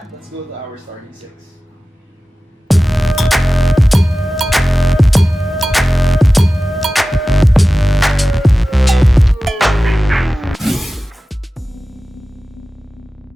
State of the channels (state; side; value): normal; both; correlation 0.96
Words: let's go to our starting six.